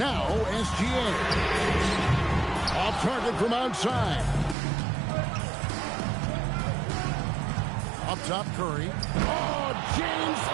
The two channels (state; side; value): drops out; left; at 4.5 s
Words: SGA. Off target from outside. Up top, Curry. Oh, James